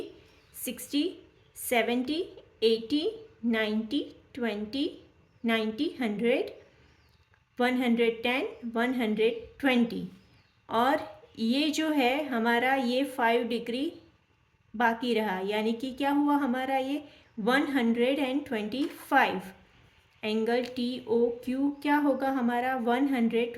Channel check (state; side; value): identical; both; correlation 1.00